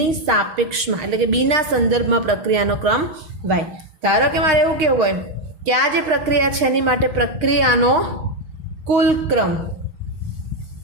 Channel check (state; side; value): late; left; 6.4 ms